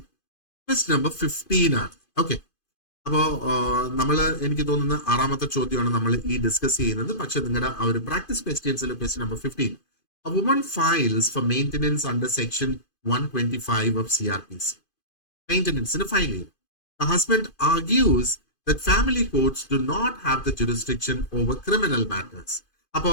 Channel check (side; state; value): right; late; 2.5 ms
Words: Question number 15 ആണ്. ഓക്കെ, അപ്പോ എനിക്ക് തോന്നുന്ന 6ാമത്തെ ചോദ്യമാണ് നമ്മൾ ഈ ഡിസ്കസ് ചെയ്യുന്നത്. പക്ഷെ നിങ്ങളുടെ ആ ഒരു പ്രാക്ടീസ് ക്വസ്റ്റ്യൻസിൽ question number 15, a woman files for maintenance under section 125 of CRPC. Maintenance in a filing. The husband argues that family courts do not have the jurisdiction over criminal matters.